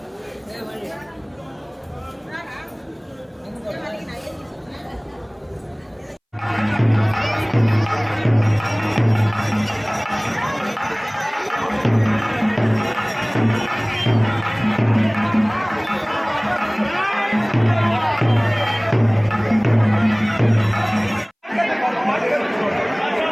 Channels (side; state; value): both; identical; correlation 1.00